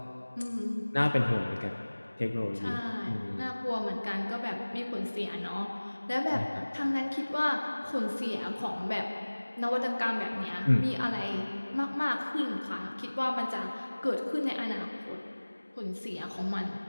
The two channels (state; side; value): inverted; both; correlation -1.00